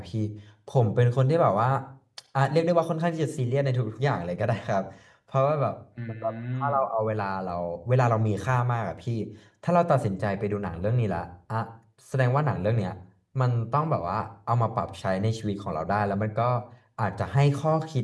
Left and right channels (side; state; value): both; identical; correlation 1.00